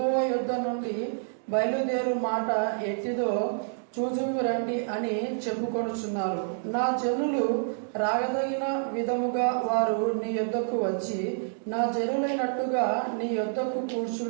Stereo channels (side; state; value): left; silent; digital silence